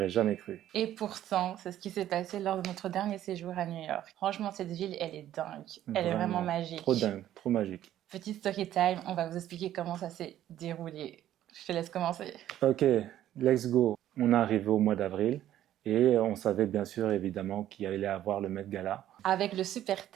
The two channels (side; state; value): left; quieter; 12.3 dB